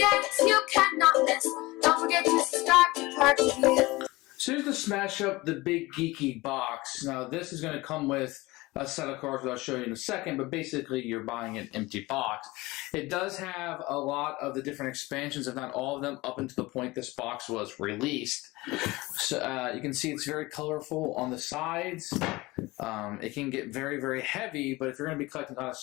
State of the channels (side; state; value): right; quieter; 21.2 dB